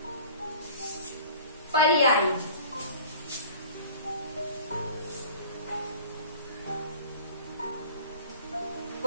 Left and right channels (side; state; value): both; inverted; correlation -0.45